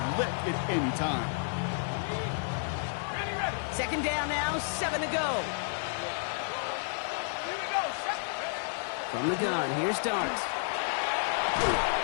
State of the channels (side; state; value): right; silent; digital silence